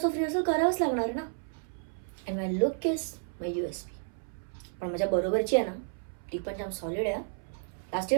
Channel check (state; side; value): silent; left; 57 dB below the other